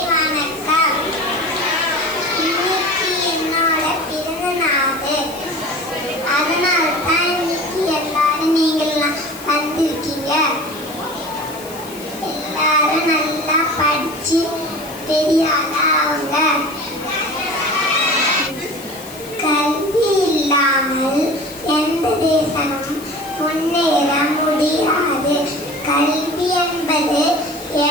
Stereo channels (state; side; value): noise; left; hiss, 16 dB below the sound